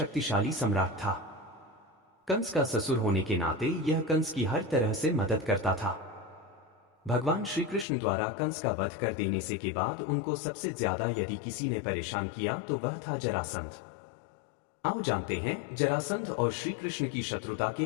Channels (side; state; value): right; drops out; at 7.9 s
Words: सम्राट था। कंस का ससुर होने के नाते यह कंस की हर तरह से मदद करता था। भगवान श्री कृष्ण द्वारा कंस का वध कर देने से के बाद उनको सबसे ज्यादा यदि किसी ने परेशान किया तो वह था जरासंध। आओ जानते हैं जरासंध और श्री कृष्ण की शत्रुता के